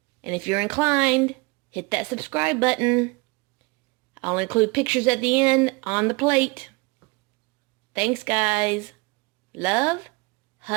And if you're inclined, hit that subscribe button. I'll include pictures at the end on the plate. Thanks, guys. Love,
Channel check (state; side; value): quieter; left; 27.5 dB